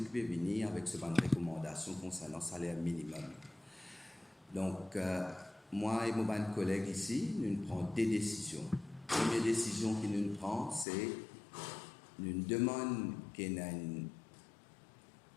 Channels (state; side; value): drops out; right; at 10.9 s